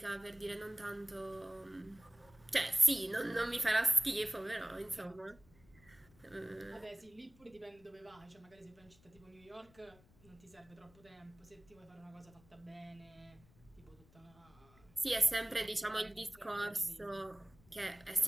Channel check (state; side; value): noise; left; rumble, 27 dB below the sound